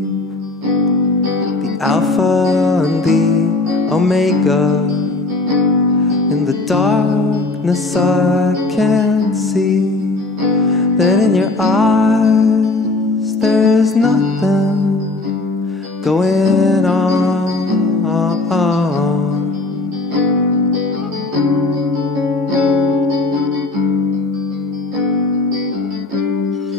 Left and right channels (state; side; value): quieter; right; 3.1 dB